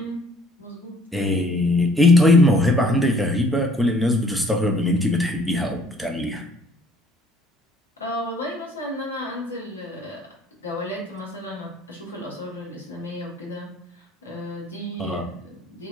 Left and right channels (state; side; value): normal; both; correlation 0.58